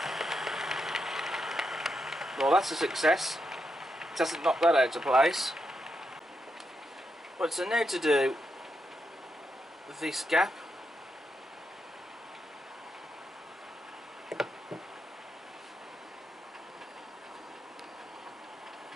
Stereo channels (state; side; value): normal; both; correlation 0.83